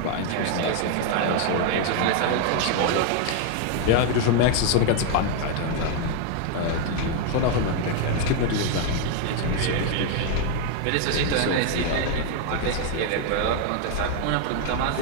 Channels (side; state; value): both; different; correlation 0.00